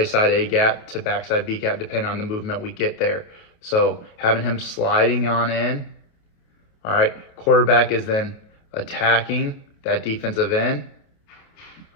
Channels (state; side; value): late; right; 28 ms